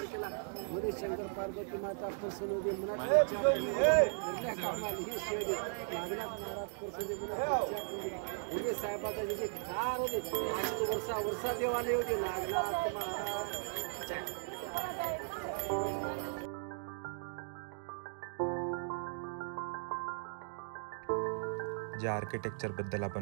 केला. मध्ये शंकर पार्वती माता परसुरली मनात घरल्या कामाला ही शेडी नागनाथ महाराज परसुरली मनात भोगे साहेबाचा जे कार होते आज तो वर्षा देव आले होते. नागनाथ महाराज ज्या आर्किटेक्चरबद्दल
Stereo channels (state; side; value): silent; left; digital silence